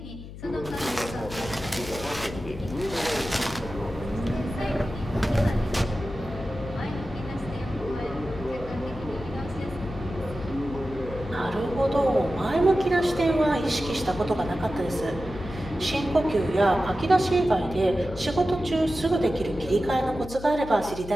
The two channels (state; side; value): noise; left; hum, 13 dB below the sound